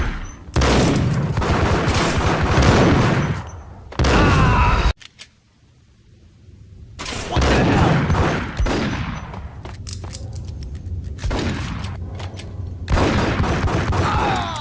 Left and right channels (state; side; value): identical; both; correlation 1.00